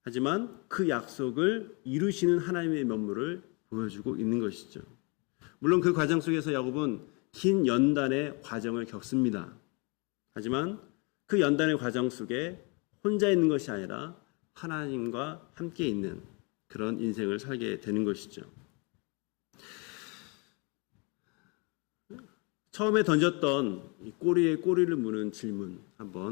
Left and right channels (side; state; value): right; quieter; 31.7 dB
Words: 하지만 그 약속을 이루시는 하나님의 면모를 보여주고 있는 것이죠. 물론 그 과정 속에서 야곱은 긴 연단의 과정을 겪습니다. 하지만 그 연단의 과정 속에 혼자 있는 것이 아니라 하나님과 함께 있는 그런 인생을 살게 되는 것이죠. 처음에 던졌던 이 꼬리에 꼬리를 무는 질문